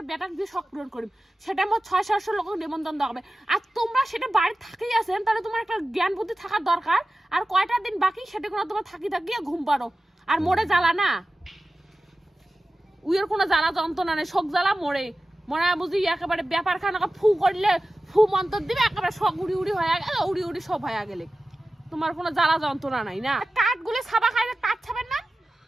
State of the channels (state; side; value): normal; both; correlation 0.95